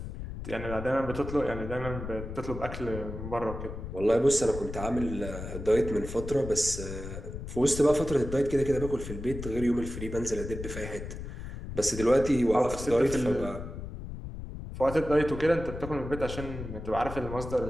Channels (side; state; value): left; noise; rumble, 8 dB below the sound